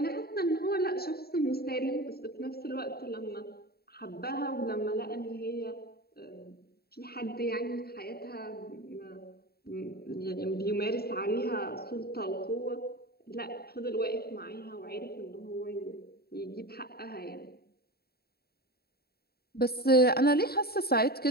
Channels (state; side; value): late; right; 0.45 ms